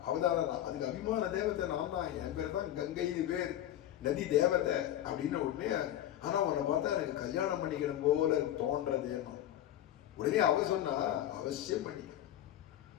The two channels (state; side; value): quieter; right; 12.3 dB